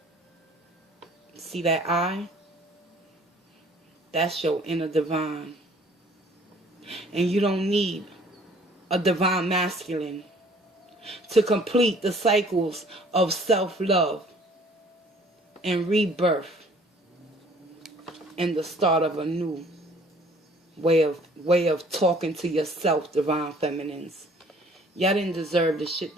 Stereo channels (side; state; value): both; normal; correlation 0.55